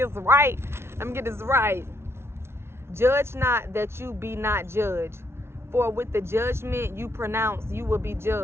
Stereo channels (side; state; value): left; late; 0.12 ms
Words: right. Judge not that you be not judged. For with the judgment you pronounce, you will be